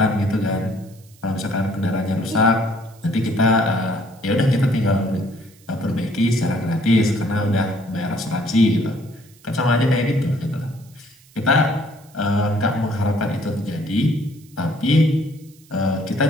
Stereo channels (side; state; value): right; noise; hiss, 28 dB below the sound